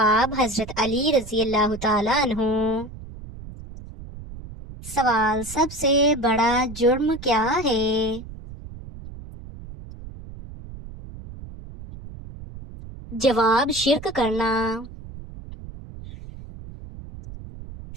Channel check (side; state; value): right; noise; rumble, 14 dB below the sound